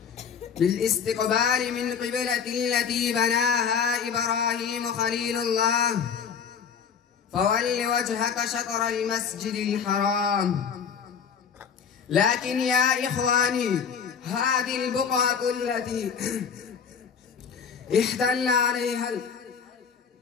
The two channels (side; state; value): right; quieter; 6.9 dB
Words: بالاستقبال من قبلة التي بناها إبراهيم خليل الله: فول وجهك شطر المسجد الحرام. لكن يا إخواني، هذه البقعة التي احتل عليها